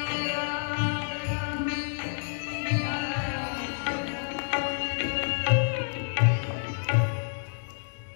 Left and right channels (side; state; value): right; silent; digital silence